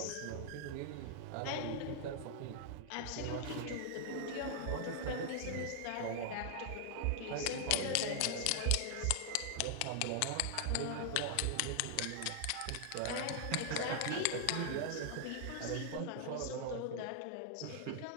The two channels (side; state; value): both; different; correlation 0.00